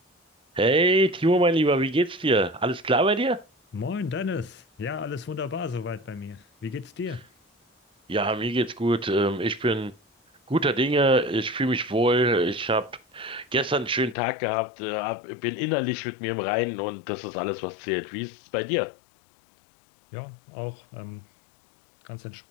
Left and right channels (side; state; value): right; drops out; at 14.2 s